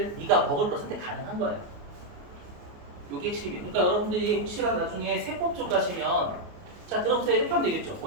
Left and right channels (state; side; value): late; left; 28 ms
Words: 네가 먹을 거 선택 가능한 거예요. 이게 핵심이에요. 그러니까 여러분들이 혹시라도 나중에 세법 쪽 가시면 자 들어보세요. 이렇게 하면 되겠죠.